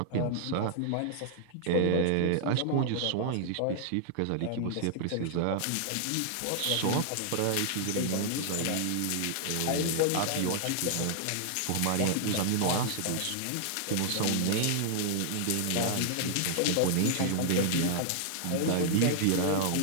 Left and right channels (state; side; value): different; both; correlation -0.01